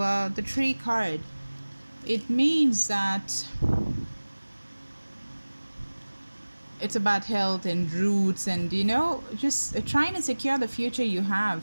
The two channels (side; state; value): both; inverted; correlation -1.00